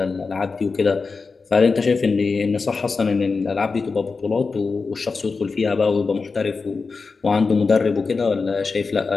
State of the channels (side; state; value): right; quieter; 4.5 dB